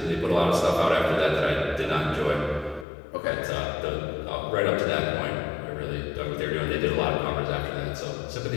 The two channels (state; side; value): drops out; right; at 2.9 s